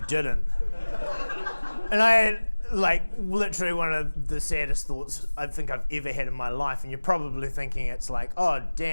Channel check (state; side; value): inverted; both; correlation -1.00